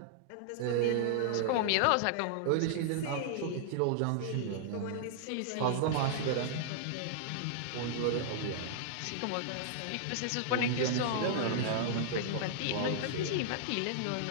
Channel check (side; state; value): both; different; correlation -0.01